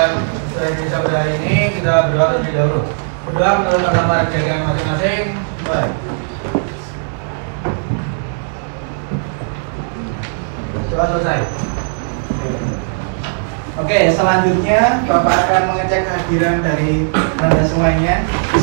Bahasa Indonesia pada hari ini, kita berdoa terlebih dahulu. Berdoa menurut agama dan keyakinan masing-masing. Mulai. Doa selesai. Oke, selanjutnya Bapak akan mengecek kehadiran dari Anda semuanya. Di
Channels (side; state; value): left; silent; 68 dB below the other